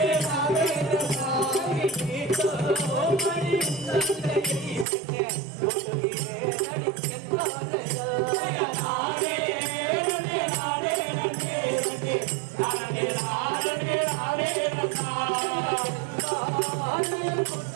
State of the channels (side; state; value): left; drops out; at 4.9 s